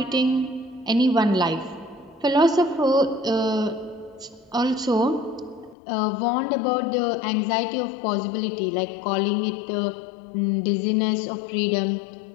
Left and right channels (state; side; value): drops out; right; at 5.8 s